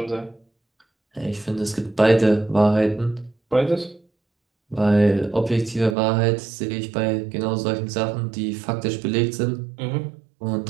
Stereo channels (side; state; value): left; drops out; at 6.0 s